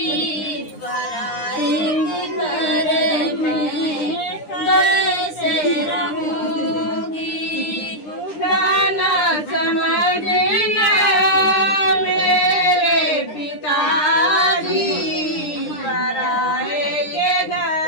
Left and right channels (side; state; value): right; late; 9.8 ms